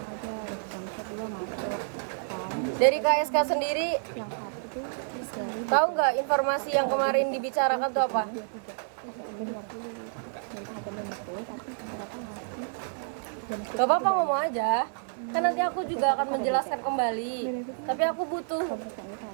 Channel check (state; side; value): silent; left; digital silence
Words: Dari KSK sendiri tahu nggak informasi yang kemarin dibicarakan tuh apa? Gak apa-apa, ngomong aja. Kan nanti aku juga akan menjelaskan kembali. Tapi aku butuh